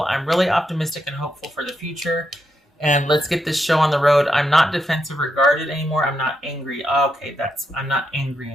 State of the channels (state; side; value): normal; both; correlation 0.82